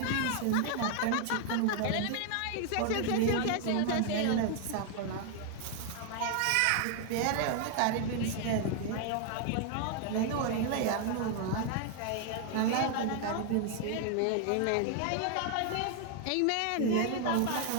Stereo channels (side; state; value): both; different; correlation 0.00